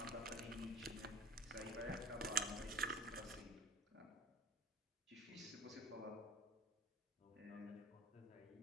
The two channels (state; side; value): normal; both; correlation 0.41